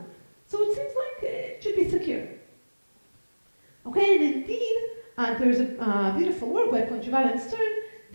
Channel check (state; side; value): inverted; both; correlation -1.00